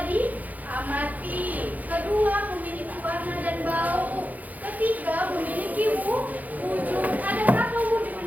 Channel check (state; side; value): late; left; 0.080 ms